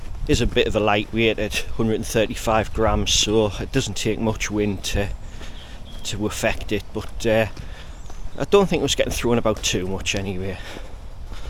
is a bit of a lightweight at 135 grams, so it doesn't take much wind to affect it, but I don't think it was getting thrown about too much anyway.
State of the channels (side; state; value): both; identical; correlation 1.00